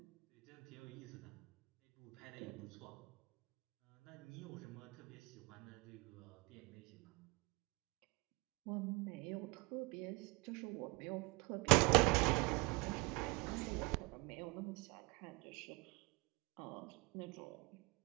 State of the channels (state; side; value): quieter; left; 27.2 dB